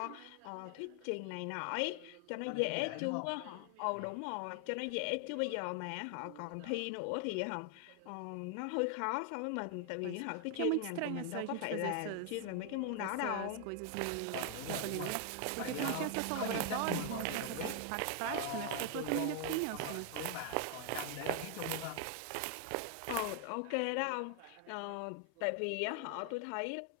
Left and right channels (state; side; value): different; both; correlation 0.00